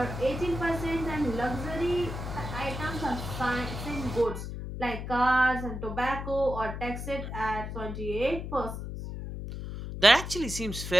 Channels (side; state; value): left; noise; hum, 7 dB below the sound